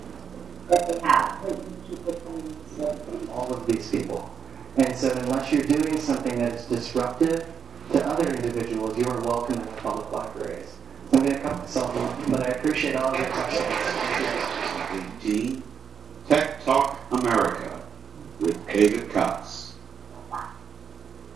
that they have. People coming. All of these people. And so unless you're doing something that's disruptive to other individuals, you are welcome in the public libraries. So I'm going to cut myself off, but I appreciate all of your questions. 18, Tech Talk America with David Cox.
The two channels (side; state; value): left; quieter; 7.1 dB